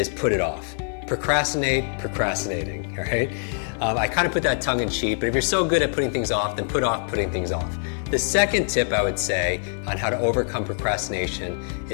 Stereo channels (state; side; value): silent; right; digital silence